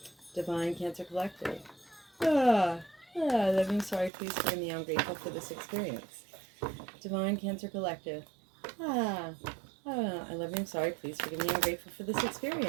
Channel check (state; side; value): drops out; left; at 4.1 s